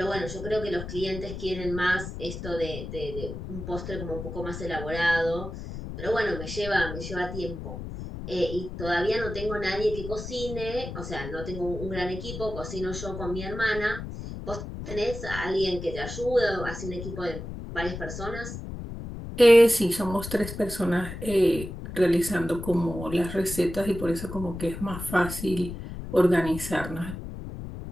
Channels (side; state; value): left; noise; rumble, 8 dB below the sound